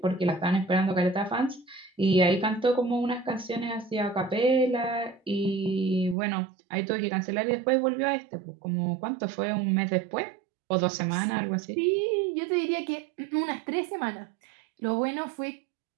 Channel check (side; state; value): left; drops out; at 6.2 s